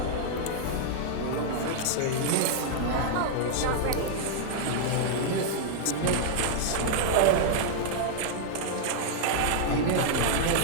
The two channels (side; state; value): both; different; correlation -0.01